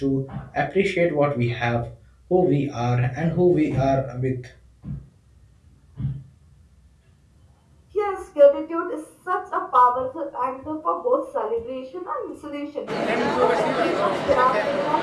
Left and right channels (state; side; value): identical; both; correlation 1.00